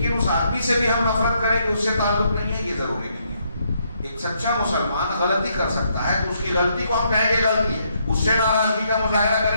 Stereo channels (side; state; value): both; inverted; correlation -0.74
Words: اس آدمی سے بھی ہم نفرت کریں کہ اس سے تعلق نہیں ہے، یہ ضروری نہیں ہے. ایک سچا مسلمان غلطی کر سکتا ہے تو اس کی غلطی کو ہم کہیں گے غلطی ہے، اس سے ناراضگی کا مظاہرہ